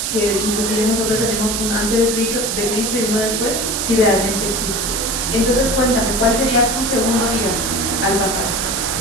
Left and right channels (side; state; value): right; noise; hiss, 1 dB below the sound